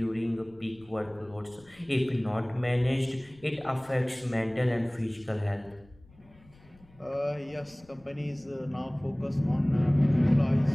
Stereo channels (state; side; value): noise; left; rumble, 27 dB below the sound